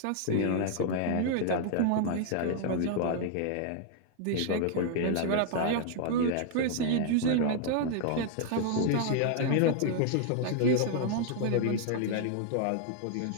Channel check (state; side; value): different; both; correlation 0.00